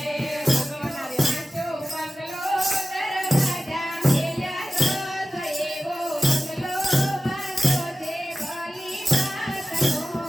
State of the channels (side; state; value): both; normal; correlation 0.95